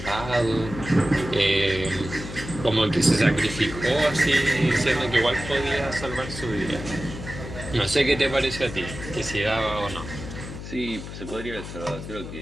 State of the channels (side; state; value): left; noise; hum, 10 dB below the sound